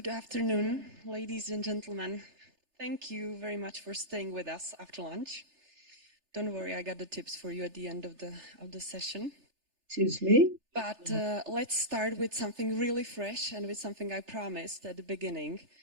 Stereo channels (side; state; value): left; late; 3.3 ms